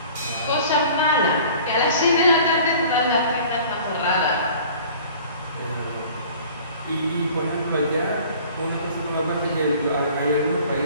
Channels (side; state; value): both; inverted; correlation -0.47